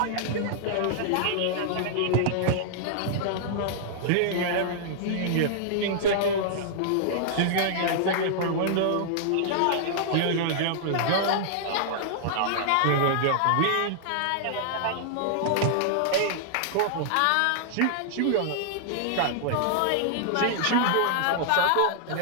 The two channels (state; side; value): different; both; correlation -0.01